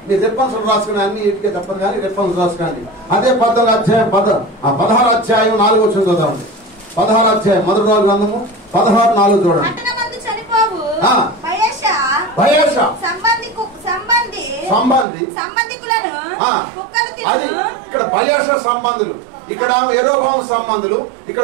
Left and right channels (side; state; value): left; drops out; at 15.1 s